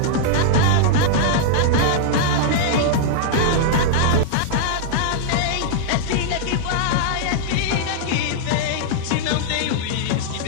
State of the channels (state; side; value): different; both; correlation -0.01